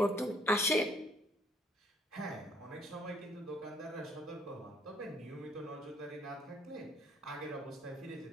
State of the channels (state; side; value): normal; both; correlation 0.63